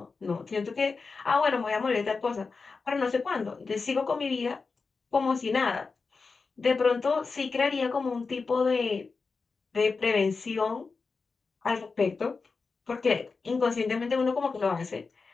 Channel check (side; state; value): right; quieter; 4.5 dB